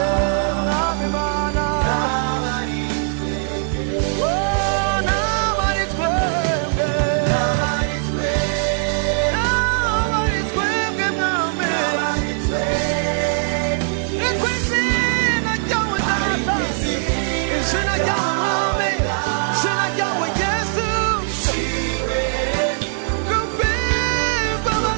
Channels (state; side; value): silent; left; 59 dB below the other